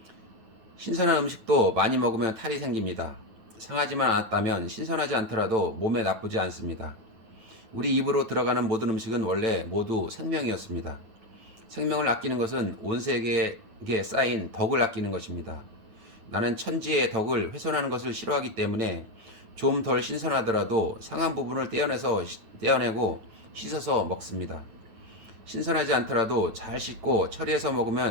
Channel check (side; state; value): left; late; 9.3 ms